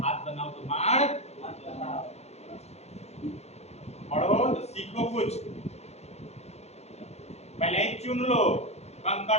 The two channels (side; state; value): right; late; 0.31 ms